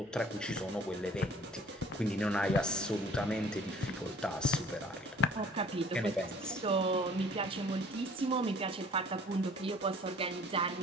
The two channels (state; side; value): normal; both; correlation 0.52